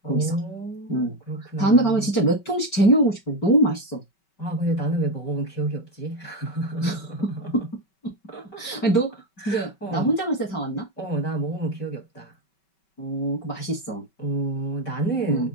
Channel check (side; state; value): right; late; 5.3 ms